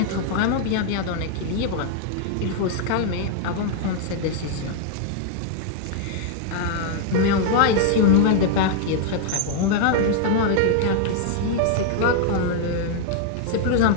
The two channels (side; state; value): both; different; correlation 0.00